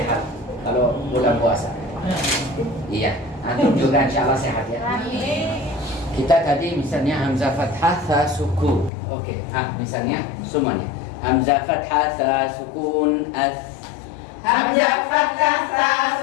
kalau bulan puasa. Iya, antum juga insya Allah sehat ya. Kita tadi misalnya hamzah fathah tha sukun. Oke. Misalnya semuanya. Hamzah fathah tha sukun as. Hamzah fathah ta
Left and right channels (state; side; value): drops out; right; at 8.9 s